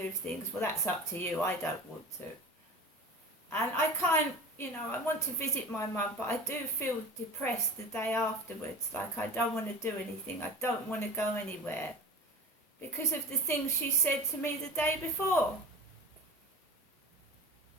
things. Well, that's up to you. I don't want to. And I can't, I want to visit my mum, but I do feel depressed the day afterwards. Like I don't want to do anything. I don't want to go anywhere because of the things she said to me the day before.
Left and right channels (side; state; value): both; normal; correlation 0.34